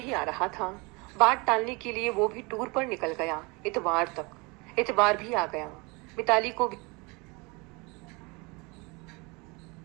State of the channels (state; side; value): quieter; left; 27.5 dB